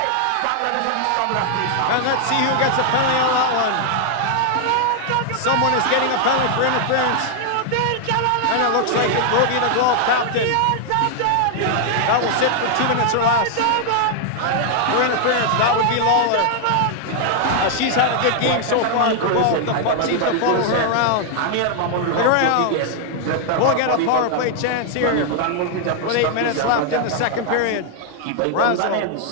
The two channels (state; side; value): different; both; correlation 0.00